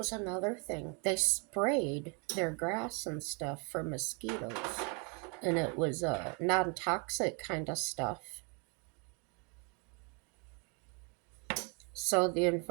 another thing. They sprayed their grass and stuff for mosquitoes. And it was non toxic kind of stuff. So the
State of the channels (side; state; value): left; quieter; 33.8 dB